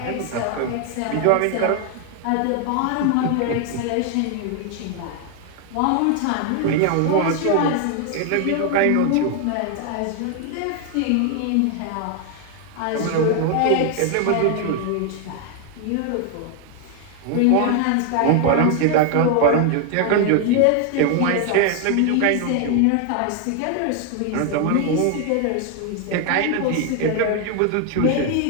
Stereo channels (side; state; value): both; different; correlation 0.01